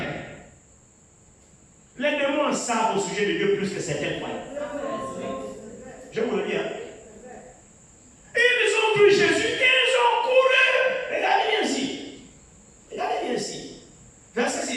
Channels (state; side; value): identical; both; correlation 1.00